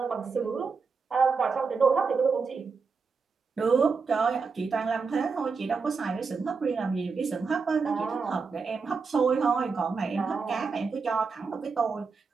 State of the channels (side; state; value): left; quieter; 5.0 dB